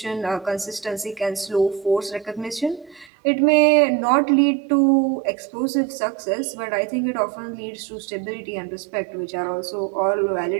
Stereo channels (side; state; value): left; drops out; at 3.1 s